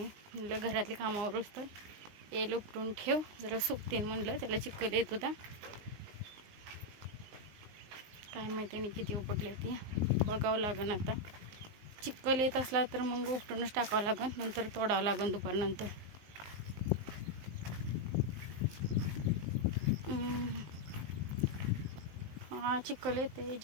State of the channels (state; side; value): late; left; 19 ms